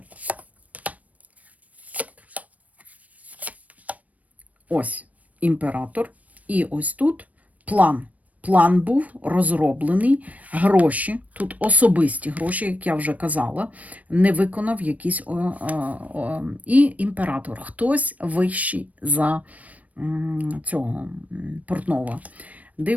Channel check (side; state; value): left; late; 0.070 ms